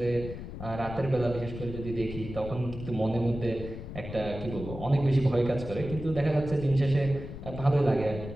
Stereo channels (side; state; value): left; noise; rumble, 10 dB below the sound